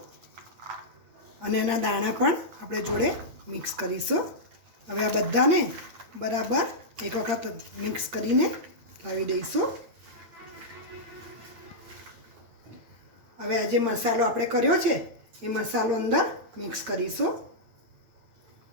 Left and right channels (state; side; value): late; left; 8.7 ms